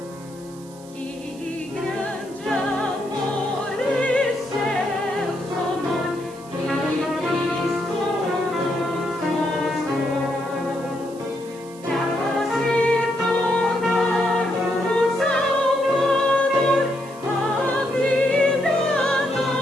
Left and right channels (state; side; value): noise; right; hiss, 22 dB below the sound